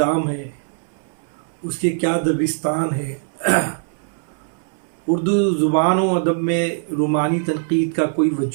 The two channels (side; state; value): left; silent; 65 dB below the other